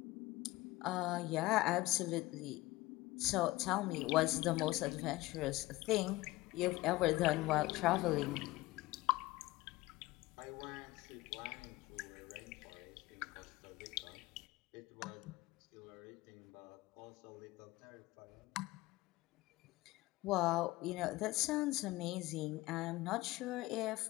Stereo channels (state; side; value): quieter; right; 19.4 dB